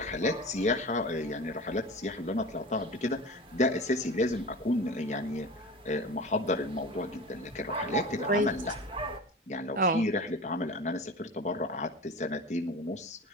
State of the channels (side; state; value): both; normal; correlation 0.33